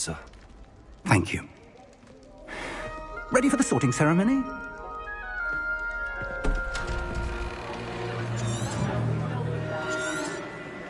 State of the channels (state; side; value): identical; both; correlation 1.00